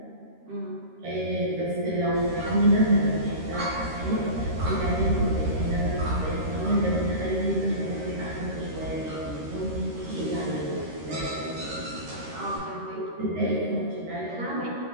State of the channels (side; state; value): left; late; 13 ms